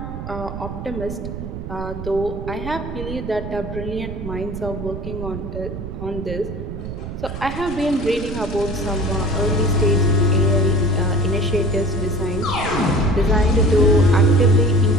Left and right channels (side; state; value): right; noise; rumble, 8 dB below the sound